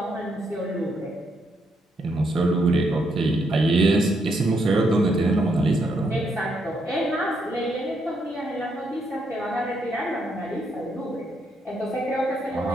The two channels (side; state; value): both; normal; correlation 0.77